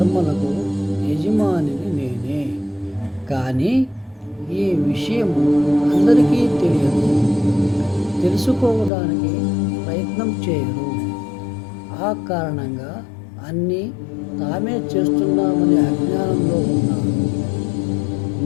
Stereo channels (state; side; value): drops out; right; at 8.9 s